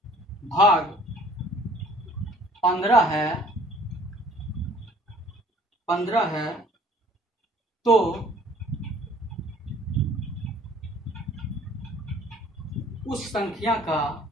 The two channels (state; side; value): normal; both; correlation 0.54